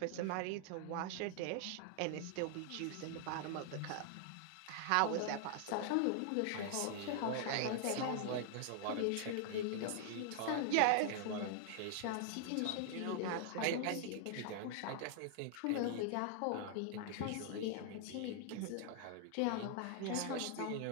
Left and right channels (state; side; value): different; both; correlation 0.00